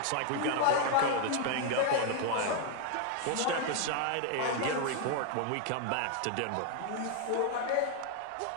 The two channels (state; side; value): different; both; correlation 0.00